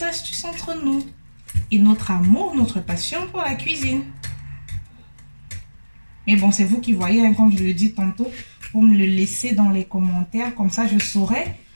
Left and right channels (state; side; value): inverted; both; correlation -1.00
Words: astuces entre nous et notre amour, notre passion pour la cuisine. Mais bon, c'est vous qui voyez, hein, comme je le dis tantôt, vous me le laissez dans les commentaires, comme ça je saurai